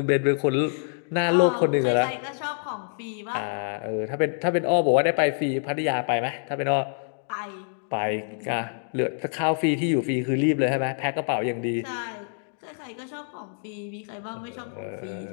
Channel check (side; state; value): right; silent; digital silence